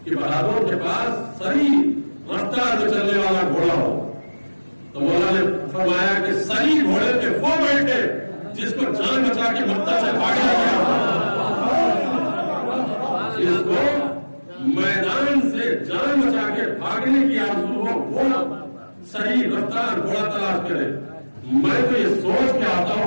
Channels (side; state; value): both; inverted; correlation -1.00